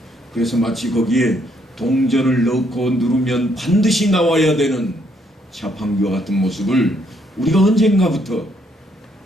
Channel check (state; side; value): normal; both; correlation 0.71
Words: 그래서 마치 거기에 동전을 넣고 누르면 반드시 나와야 되는 자판기와 같은 모습을 우리가 언젠가부터